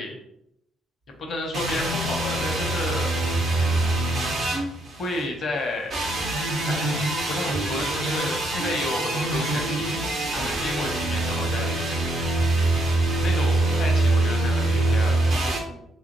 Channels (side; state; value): both; normal; correlation 0.74